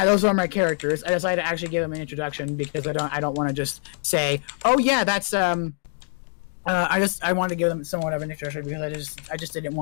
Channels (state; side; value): silent; right; digital silence